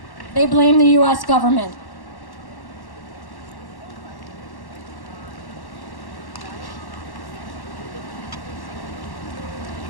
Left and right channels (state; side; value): late; right; 1.1 ms